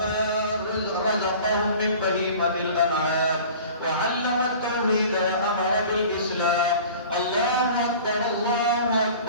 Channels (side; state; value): both; inverted; correlation -0.43